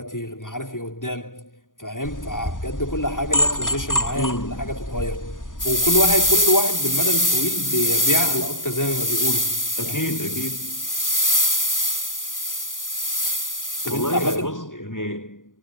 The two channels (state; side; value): late; right; 0.88 ms